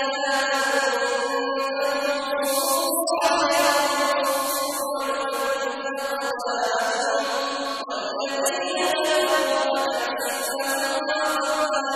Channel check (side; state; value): both; identical; correlation 1.00